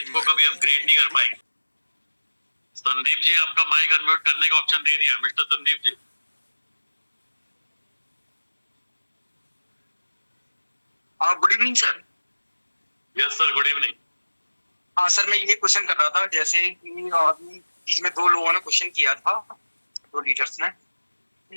को कभी अपग्रेड नहीं कर पाएंगे। संदीप जी, आपका माइक अनम्यूट करने का ऑप्शन दे दिया। Mister Sandeep ji. Good evening sir. Yes sir, good evening. हाँ सर, मैं ये क्वेश्चन कर रहा था, जैसे कि अभी इसमें 2 लोगों ने क्वेश्चन किया था, 2 लीडर्स ने,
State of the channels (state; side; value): inverted; both; correlation -1.00